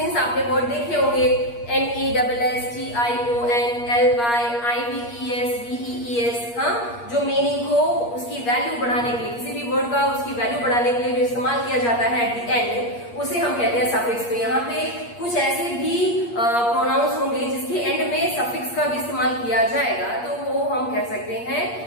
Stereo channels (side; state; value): right; late; 8.5 ms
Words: आपने वर्ड देखे होंगे, NESSTIONLYIVES, हाँ, जो मीनिंग को उसकी वैल्यू बढ़ाने के लिए, किसी भी वर्ड का उसकी वैल्यू बढ़ाने के लिए जो इस्तेमाल किया जाता है एट द एंड, उसे हम कहते हैं सफिक्स। तो यहाँ पे कुछ ऐसे भी प्रोनाउंस होंगे जिसके एंड में सफिक्स का भी इस्तेमाल किया जाएगा, तो वो हम कह सकते हैं